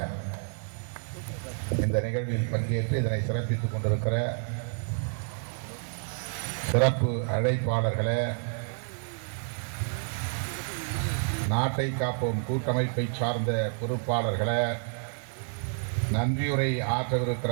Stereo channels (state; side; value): silent; left; 58 dB below the other